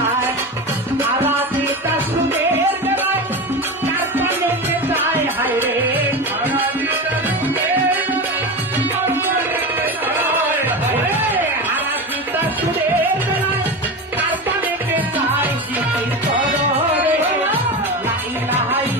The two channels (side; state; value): both; normal; correlation 0.24